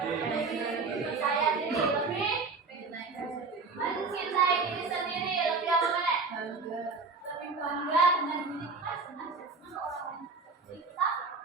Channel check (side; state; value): left; quieter; 4.3 dB